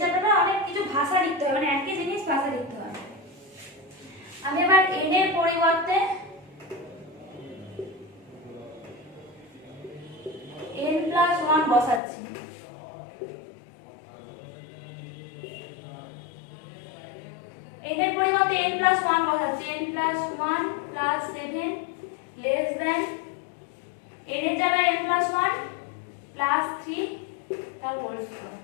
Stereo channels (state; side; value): drops out; right; at 12.0 s